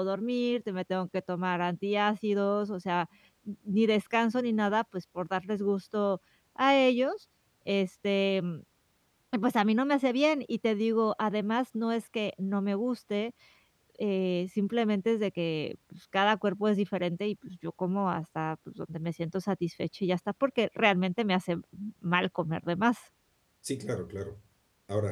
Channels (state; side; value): identical; both; correlation 1.00